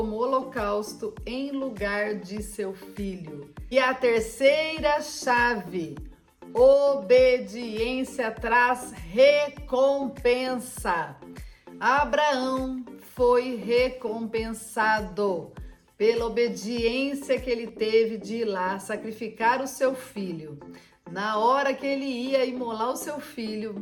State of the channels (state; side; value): identical; both; correlation 1.00